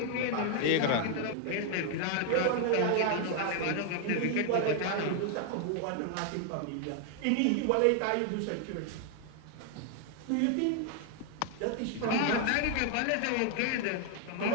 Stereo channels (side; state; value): both; different; correlation 0.00